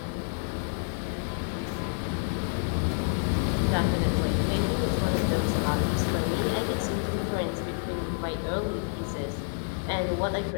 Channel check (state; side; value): silent; right; digital silence